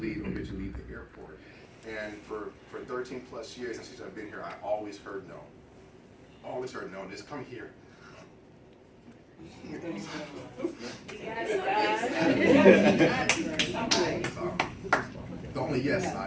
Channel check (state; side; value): identical; both; correlation 1.00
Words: leave or eventually leave the airport. And for 13 plus years since I've been here, I always heard no. Always heard no. Just come here. The only yes